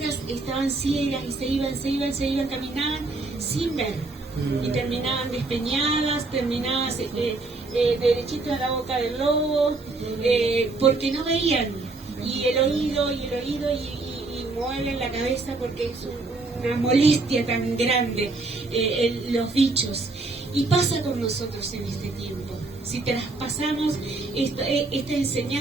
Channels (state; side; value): quieter; left; 3.4 dB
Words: estaban ciegas y se iban, caminaban sin ver. Y terminaban despeñadas, terminadas derechitos a la boca del lobo, porque no veían. Y el oído, y mueven la cabeza porque es una molestia tan grande, los bichos. Y pasa con nosotros en este tiempo. Si traspasamos esta